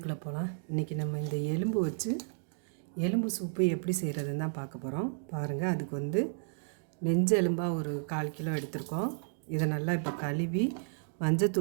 போகலாம். இன்றைக்கி நம்ம இந்த எலும்பு வச்சு எலும்பு சூப்பு எப்படி செய்கிறதுன்னு தான் பார்க்க போகிறோம். பாருங்கள், அதுக்கு நெஞ்சு எலும்பாக ஒரு 1/4 கிலோ எடுத்திருக்கோம். இதை நல்லா இப்போ கழுவி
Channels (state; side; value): silent; left; digital silence